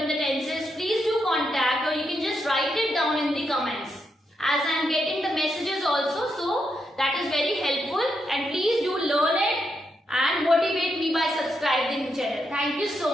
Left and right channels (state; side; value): normal; both; correlation 0.82